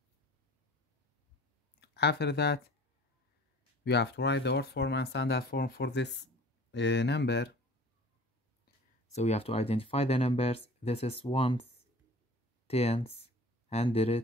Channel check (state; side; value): normal; both; correlation 0.45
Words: After that, we have to write the odd form and standard form for this number. So we have to identify the numbers. This is ones, tens,